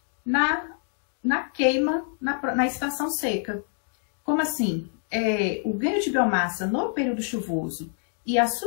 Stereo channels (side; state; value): right; silent; 61 dB below the other